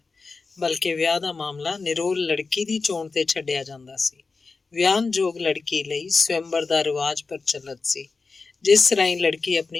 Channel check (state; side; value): quieter; right; 4.3 dB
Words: ਬਲਕਿ ਵਿਆਹ ਦਾ ਮਾਮਲਾ ਨਿਰੋਲ ਲੜਕੀ ਦੀ ਚੋਣ ਤੇ ਛੱਡਿਆ ਜਾਂਦਾ ਸੀ। ਵਿਆਹਨਯੋਗ ਲੜਕੀ ਲਈ ਸਵੰਬਰ ਦਾ ਰਿਵਾਜ ਪ੍ਰਚਲਿਤ ਸੀ, ਜਿਸ ਰਾਹੀਂ ਲੜਕੀ